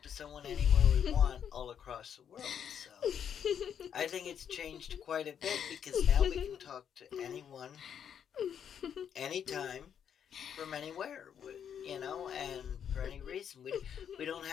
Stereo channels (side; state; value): right; quieter; 8.4 dB